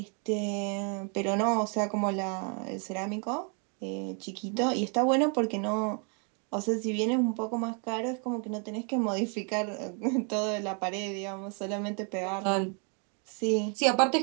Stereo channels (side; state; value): left; quieter; 38.1 dB